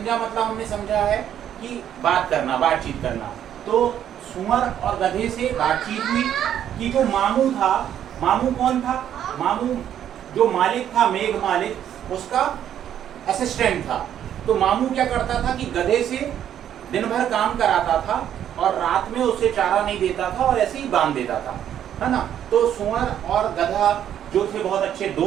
मतलब हमने समझा है कि बात करना, बातचीत करना। तो सूअर और गधे से बातचीत हुई कि जो मामू था, मामू कौन था, मामू जो मालिक था मेघ मालिक उसका असिस्टेंट था। तो मामू क्या करता था कि गधे से दिन भर काम कराता था और रात में उसे चारा नहीं देता था और ऐसे ही बांध देता था, है ना। तो सूअर और गधा जो थे बहुत अच्छे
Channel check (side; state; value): left; quieter; 10.2 dB